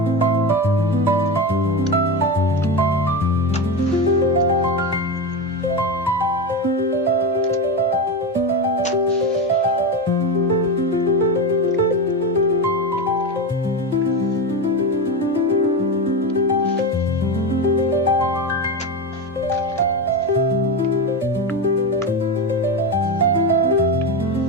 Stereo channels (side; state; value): both; normal; correlation 0.17